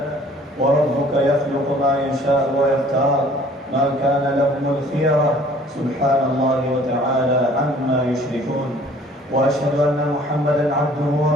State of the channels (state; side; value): normal; both; correlation 0.54